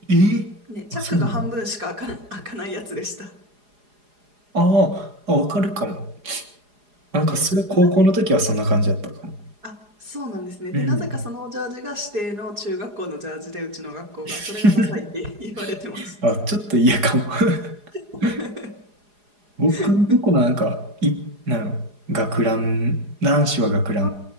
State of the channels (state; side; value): late; left; 4.8 ms